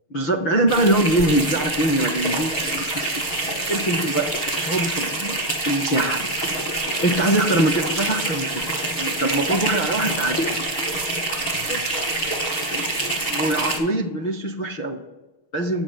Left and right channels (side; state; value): right; late; 6.6 ms